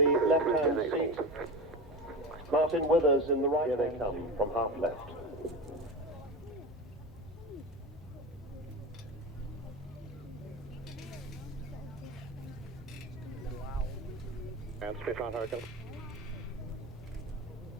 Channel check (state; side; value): normal; both; correlation 0.25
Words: left-hand seat. Martin Withers in the right. Here they come from half left. And Spitfire Hurricane.